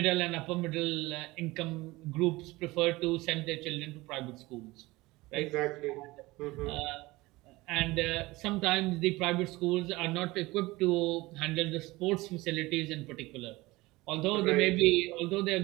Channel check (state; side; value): quieter; left; 20.6 dB